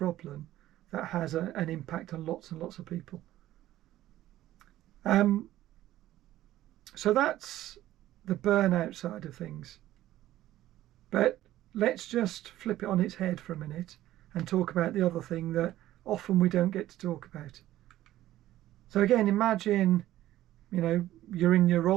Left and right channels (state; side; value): quieter; left; 14.3 dB